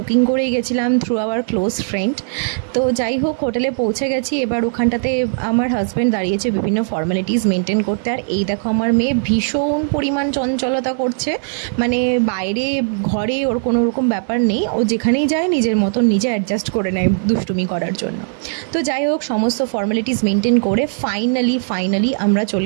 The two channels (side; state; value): left; silent; digital silence